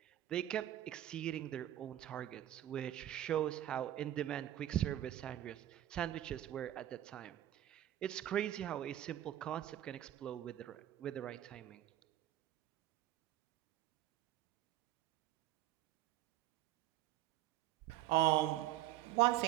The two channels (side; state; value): left; quieter; 13.0 dB